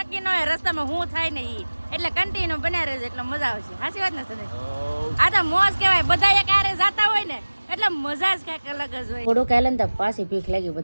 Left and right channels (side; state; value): both; inverted; correlation -1.00